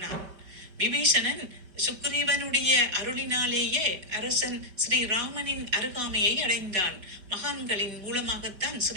விபீஷணன் சுக்ரீவனுடைய அருளினாலேயே அரசன் ஸ்ரீராமனின் அருகாமையை அடைந்தான். மகான்களின் மூலமாகத்தான்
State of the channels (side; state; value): left; late; 5.1 ms